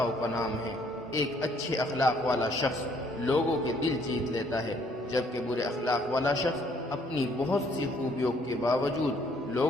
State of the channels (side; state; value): both; normal; correlation 0.64